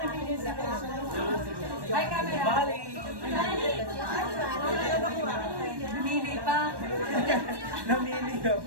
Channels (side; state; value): left; late; 1.1 ms